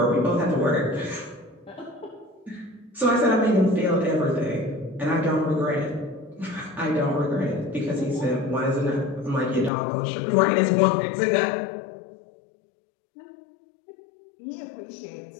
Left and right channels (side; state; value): right; drops out; at 9.7 s